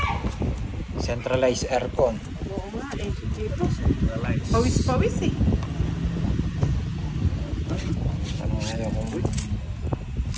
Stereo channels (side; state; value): both; identical; correlation 1.00